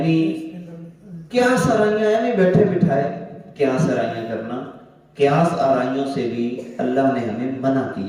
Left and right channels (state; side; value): identical; both; correlation 1.00